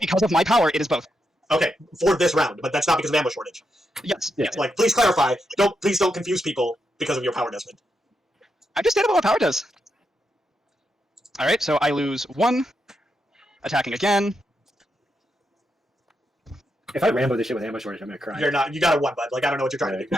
of my power, it is both. Okay, for this round, but that's not because of ammo shortage. Yes. Yeah. Like, please clarify. Please don't confuse people because of your power, Desmond. I'm just stating what power does. All right. So I lose 1. Attacking again. If I Rambo this shit with ammo shortage, I'm gonna cry. You're not. You got a 1, bud. Like, I don't know what you're trying to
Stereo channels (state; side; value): normal; both; correlation 0.83